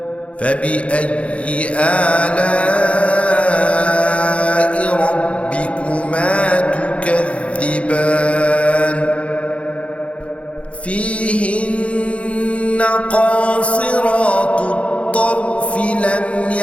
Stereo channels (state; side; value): late; right; 0.062 ms